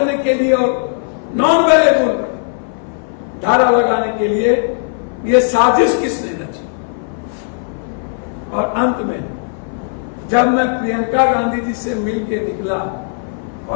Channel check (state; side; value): silent; right; 57 dB below the other